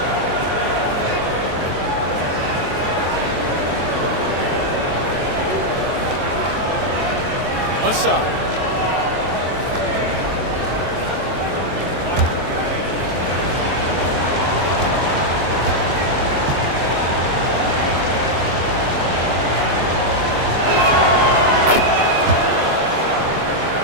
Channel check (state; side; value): late; left; 23 ms